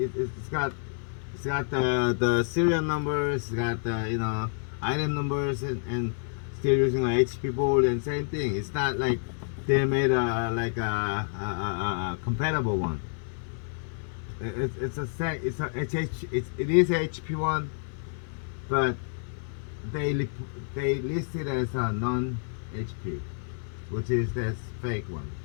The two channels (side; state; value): right; silent; digital silence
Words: got the serial numbers, it's got the item numbers, and still using a HP board and same thing. It's not like they made a compatible one. It is HP one, but they list it as a non HP, which is that's fake one.